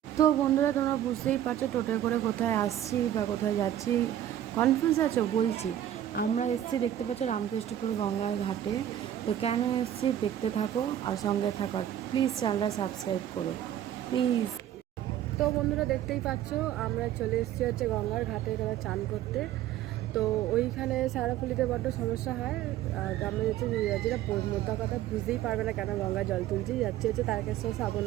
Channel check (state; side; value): quieter; left; 11.5 dB